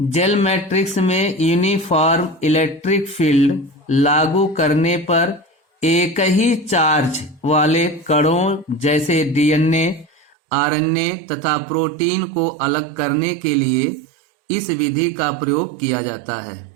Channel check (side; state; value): left; drops out; at 10.4 s